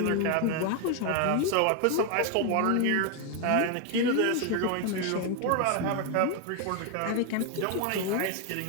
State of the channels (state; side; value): different; both; correlation 0.01